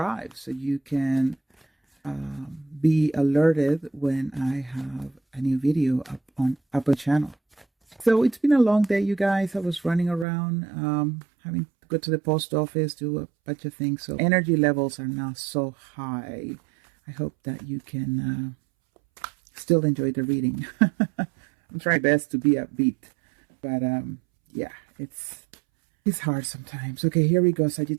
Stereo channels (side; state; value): left; drops out; at 10.2 s